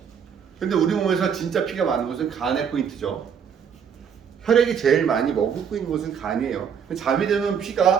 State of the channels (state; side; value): quieter; left; 7.4 dB